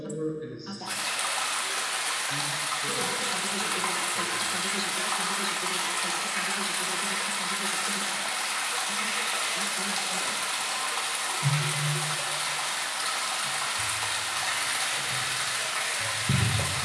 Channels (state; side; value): identical; both; correlation 1.00